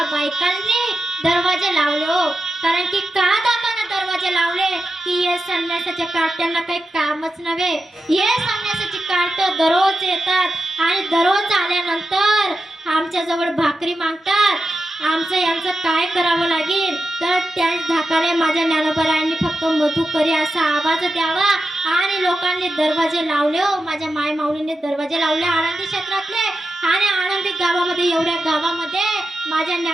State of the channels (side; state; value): both; normal; correlation 0.90